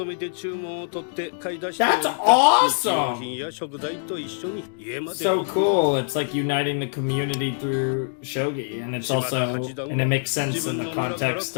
めて注文を取って買い出して That's awesome! 日用品や食材と一緒に家まで So cool. It's like uniting the community through shogi, and it's also, and it makes sense in the context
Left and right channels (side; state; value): right; silent; digital silence